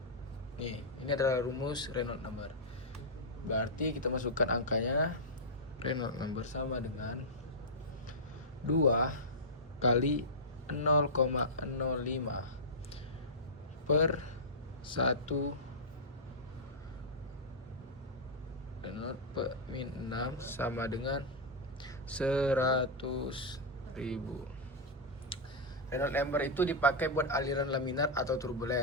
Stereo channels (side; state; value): both; normal; correlation -0.10